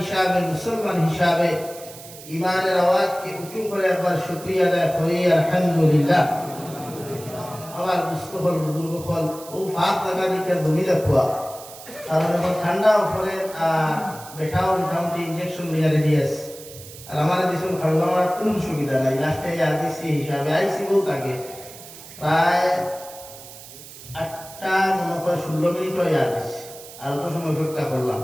মুসলমান হিসাবে ইমানের আওয়াজকে উঁচু করে একবার শুকরিয়া আদায় করি আলহামদুলিল্লাহ। আমার মুস্তফল বুজুর্গগণ, ও ফাঁক লাগা দিকে ধনী রাখুয়া, কারণ এখন ঠান্ডা পরে বেঠাও মোটামুটি ইঞ্জেকশন লিয়া রেডি আছে। আর আমার দিশন খাওয়া আমার কোনো সুবিধা নাই, লাস্টে আর দিচ্ছি হিসাবে আইসি বহুত আগে, প্রায় 8টা মনে হয় 16 মিনিট হয়ে আসছি, আর অত সময় অপেক্ষা করলাম।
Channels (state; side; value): noise; right; hiss, 16 dB below the sound